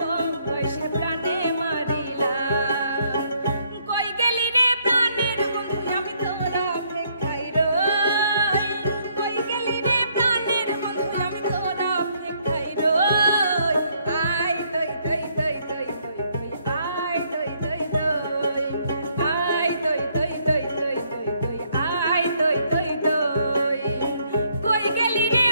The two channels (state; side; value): inverted; both; correlation -0.69